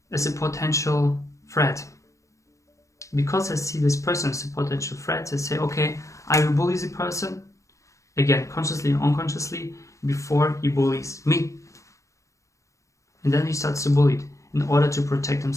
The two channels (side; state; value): right; late; 0.15 ms